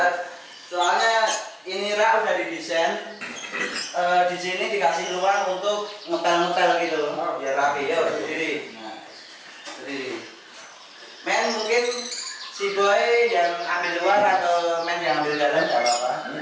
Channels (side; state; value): both; identical; correlation 1.00